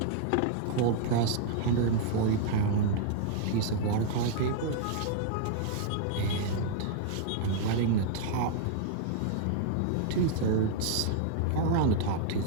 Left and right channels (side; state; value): both; different; correlation -0.01